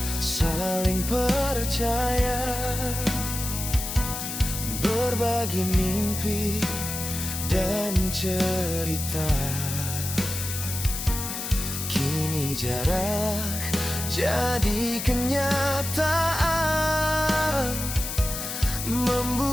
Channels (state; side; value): noise; left; hiss, 5 dB below the sound